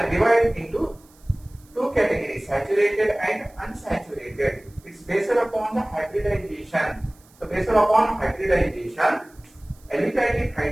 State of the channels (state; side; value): noise; right; hiss, 29 dB below the sound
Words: into two categories, saturated and unsaturated. It's based upon the hybridization. So based upon hybridization, aliphatic